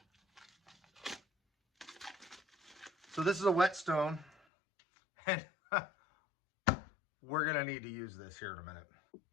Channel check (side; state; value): right; drops out; at 4.4 s